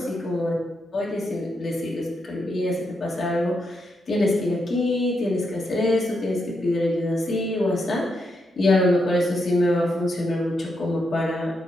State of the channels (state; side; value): normal; both; correlation 0.82